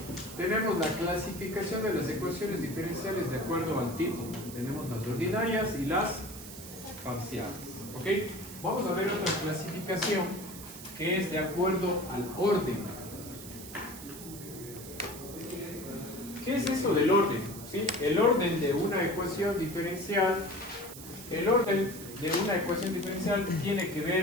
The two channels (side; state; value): right; noise; hiss, 13 dB below the sound